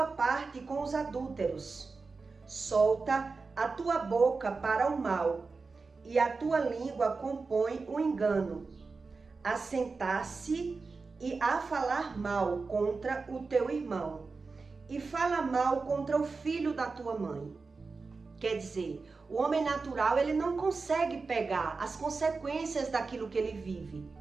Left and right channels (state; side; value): quieter; left; 4.3 dB